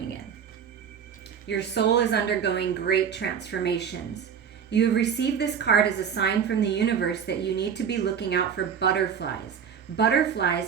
in. Your soul is undergoing great transformations. You have received this card as a sign from the universe that you need to be looking out for butterflies.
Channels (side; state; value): left; quieter; 7.5 dB